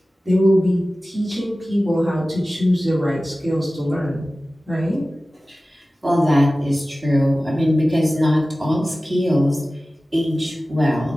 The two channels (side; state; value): both; normal; correlation 0.96